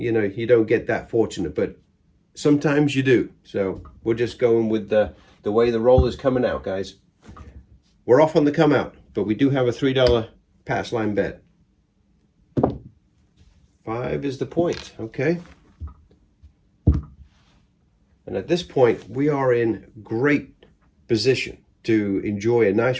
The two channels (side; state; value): both; identical; correlation 1.00